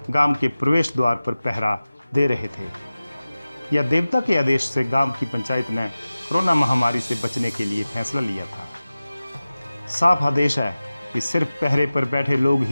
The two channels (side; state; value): both; inverted; correlation -0.97